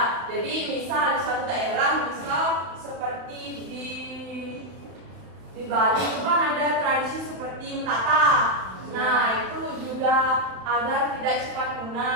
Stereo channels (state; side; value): late; left; 32 ms